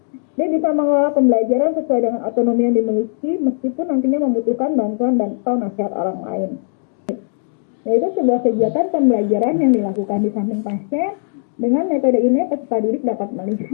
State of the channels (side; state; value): right; silent; digital silence